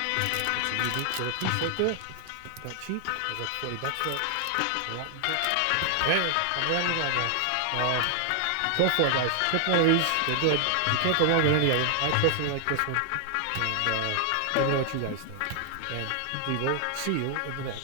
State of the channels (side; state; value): both; different; correlation 0.00